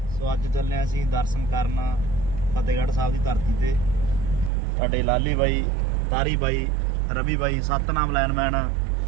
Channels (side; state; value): left; drops out; at 4.5 s